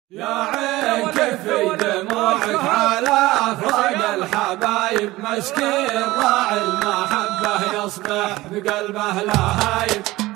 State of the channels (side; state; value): left; quieter; 18.6 dB